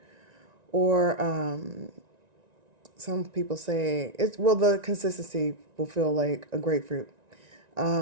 Or some people say the consistency will feel like a grapefruit,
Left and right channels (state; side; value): late; left; 1.9 ms